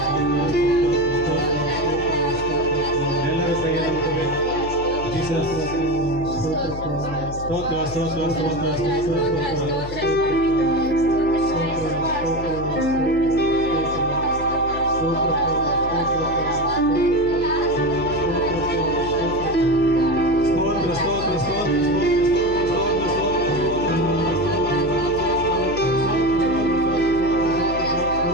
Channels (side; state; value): left; noise; hum, 11 dB below the sound